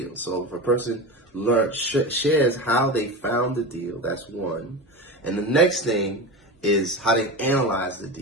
So if a person shares how they found the deal, that's one. And the next thing is how they analyze the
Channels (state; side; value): normal; both; correlation 0.24